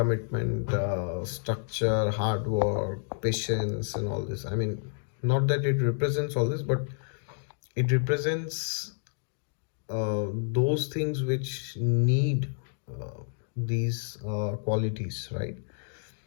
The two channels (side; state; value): right; silent; digital silence